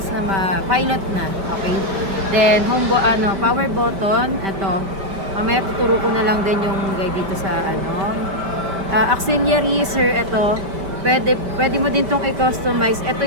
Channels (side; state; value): left; late; 5.2 ms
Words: na pilot na. Okay. Then power button, ito. Mamaya tuturo ko na lang din yung guide dito sa ano. Auxiliary, sir, ito. Pwede mo din tong i-customize. Ito